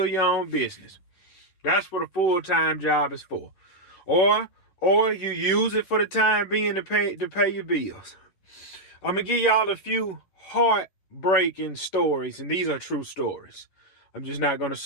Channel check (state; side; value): late; right; 11 ms